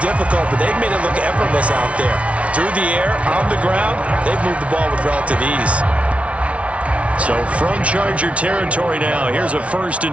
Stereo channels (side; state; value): left; late; 0.063 ms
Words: but they've made it look effortless out there. Through the air, on the ground, they've moved the ball with relative ease. So from Charger territory now, here's a 1st